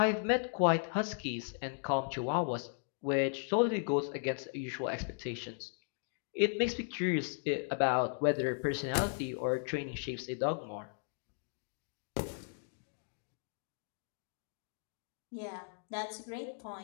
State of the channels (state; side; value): silent; right; digital silence